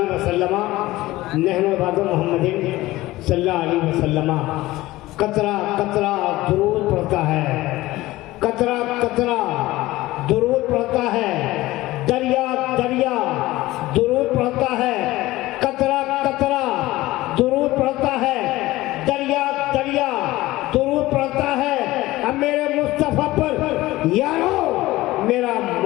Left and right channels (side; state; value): right; quieter; 17.9 dB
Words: वसल्लम नहनु इबादु मुहम्मदिन सल्लल्लाहु अलैहि वसल्लम। कतरा कतरा दुरूद पढ़ता है, कतरा कतरा दुरूद पढ़ता है, दरिया दरिया दुरूद पढ़ता है, कतरा कतरा दुरूद पढ़ता है, दरिया दरिया दुरूद पढ़ता है। अब मेरे मुस्तफा पर यारो मेरा